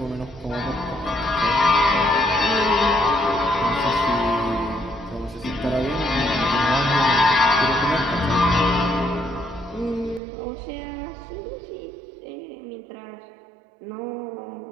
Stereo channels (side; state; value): left; drops out; at 10.2 s